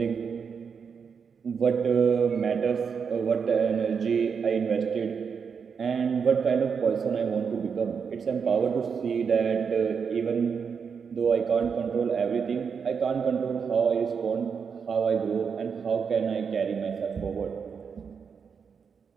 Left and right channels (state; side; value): quieter; left; 6.2 dB